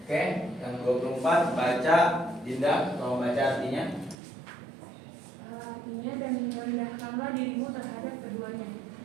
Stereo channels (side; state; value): left; drops out; at 4.2 s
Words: Oke, yang 24 baca Dinda, kalau baca artinya. Artinya, dan merendahkanlah dirimu terhadap keduanya